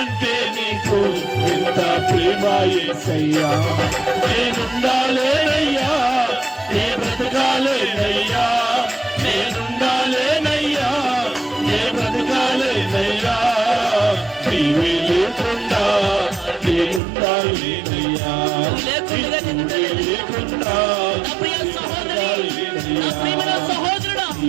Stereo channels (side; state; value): left; drops out; at 17.0 s